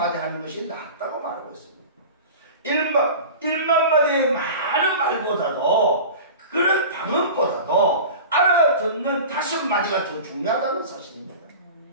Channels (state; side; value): inverted; both; correlation -0.35